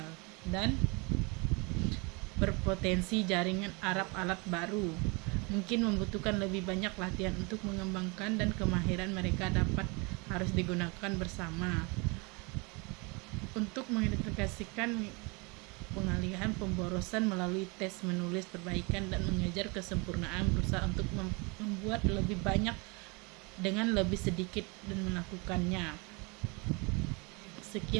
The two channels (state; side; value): quieter; left; 29.2 dB